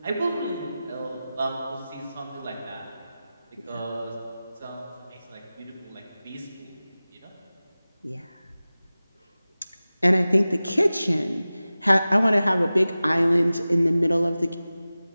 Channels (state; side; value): inverted; both; correlation -0.97